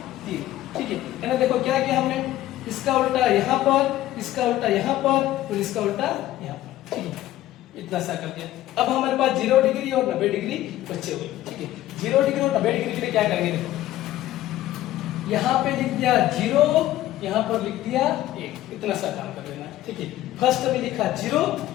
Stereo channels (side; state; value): right; quieter; 14.5 dB